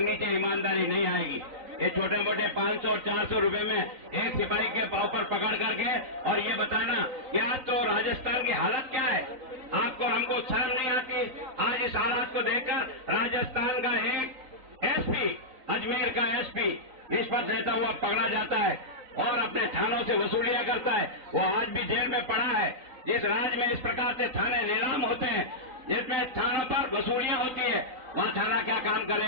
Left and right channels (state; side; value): late; left; 3.9 ms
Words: ईमानदारी नहीं आएगी। ये छोटे मोटे 500 और 400 रुपए में एक सिपाही के पांव पर पकड़ करके और ये बताना कि आज तो राजस्थान की हालत क्या है, आपको हमको शर्म नहीं आती? आज इस हालात को देखकर राजस्थान का एक एसपी, अजमेर का एसपी रिश्वत लेता हुआ पकड़ा जाता है और अपने थानों से वसूलियां करता है। वो आज भी जेल में पड़ा है। जिस राज्य में इस प्रकार से थाने नीलाम होते हैं, जिसमें थानों पर वसूलियां होती है, वहां थाना क्या काम